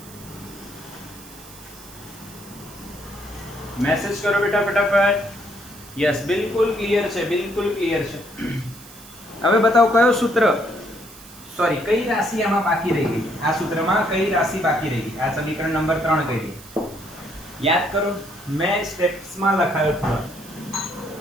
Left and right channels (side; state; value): right; noise; hiss, 19 dB below the sound